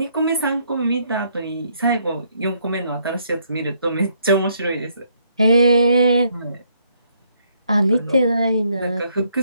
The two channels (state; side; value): inverted; both; correlation -0.71